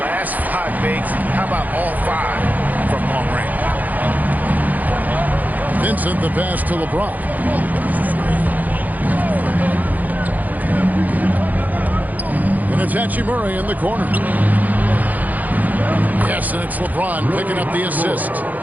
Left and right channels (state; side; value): late; left; 0.081 ms